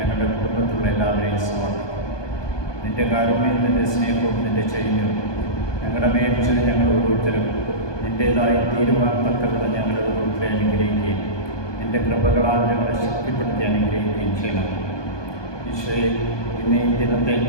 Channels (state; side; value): late; right; 1.2 ms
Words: കുടുംബത്തിലുള്ള എല്ലാവരെയും സമർപ്പിക്കും. നിൻ്റെ കാരുണ്യവും നിൻ്റെ സ്നേഹവും നിൻ്റെ ചൈന്യവും ഞങ്ങളുടെ മേൽച്ചത് ഞങ്ങൾ ഓരോരുത്തരും നിൻ്റേതായി തീരുവാൻ തക്കവിധം ഞങ്ങളുടെ ഓരോരുത്തരെ അനുഗ്രഹിക്കുകയും നിൻ്റെ കൃപകളാൽ ഞങ്ങളെ ശക്തിപ്പെടുത്തി അനുഗ്രഹിക്കുകയും ചെയ്യണം. ഈശോയെ, ഇന്ന് ഈ ദിനത്തെ